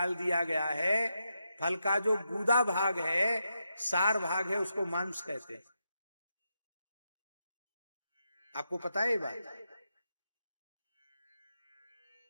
दिया गया है, फल का जो गूदा भाग है, सार भाग है, उसको मांस कहते हैं। आपको पता है ये बात?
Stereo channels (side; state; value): both; inverted; correlation -0.84